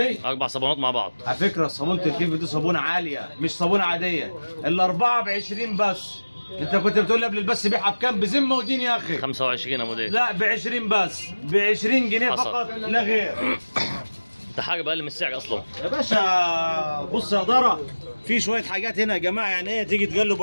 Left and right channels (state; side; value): inverted; both; correlation -1.00